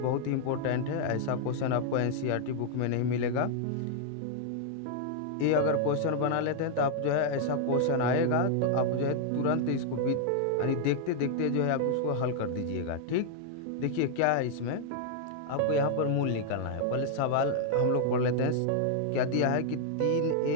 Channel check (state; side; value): different; both; correlation -0.01